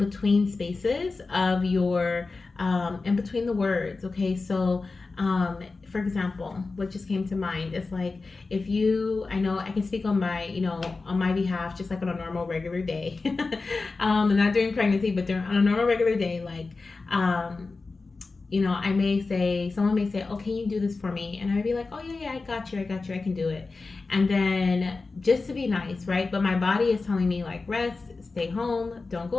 spaces of your, in between the words, okay? So, for example, what just came to mind is like, I know I can speak on my behalf, just like on a normal regular day, not during pregnancy, but on a normal regular day, like, someone may say, oh, can you do this for me? And I'd be like, oh yeah, I got you, I can do it. And then just to be nice, right? But my body is telling me like, rest, stay home, don't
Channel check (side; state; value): right; quieter; 3.9 dB